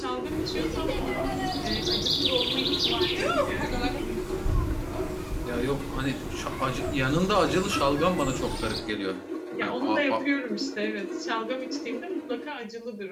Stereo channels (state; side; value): identical; both; correlation 1.00